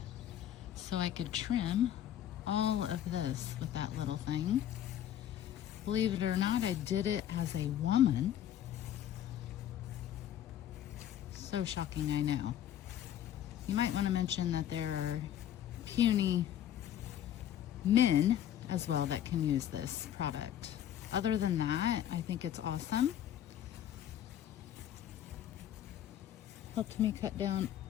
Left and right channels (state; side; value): quieter; right; 11.0 dB